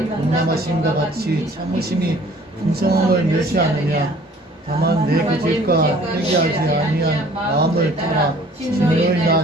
용남하심과 같이 참으심이 풍성함을 멸시하느냐. 다만 내 그 죄과 회개하지 아니한 마음을 따라 진노의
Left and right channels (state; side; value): normal; both; correlation 0.54